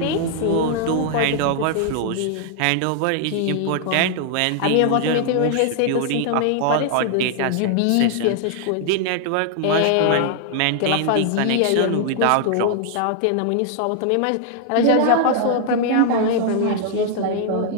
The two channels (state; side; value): different; both; correlation 0.00